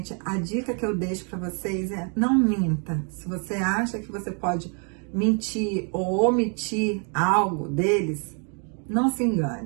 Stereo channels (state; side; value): quieter; left; 39.8 dB